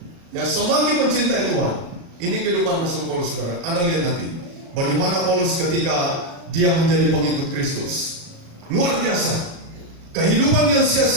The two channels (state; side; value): late; left; 37 ms